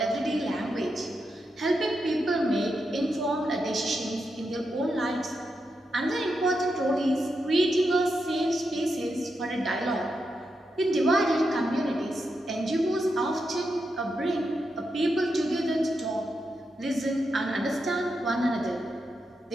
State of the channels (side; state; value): both; normal; correlation 0.86